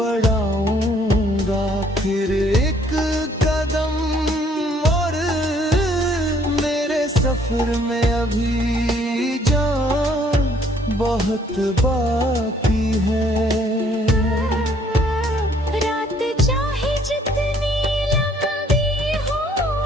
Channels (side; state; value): both; normal; correlation 0.63